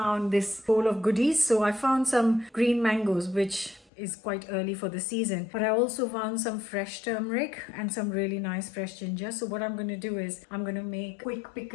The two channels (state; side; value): drops out; right; at 3.9 s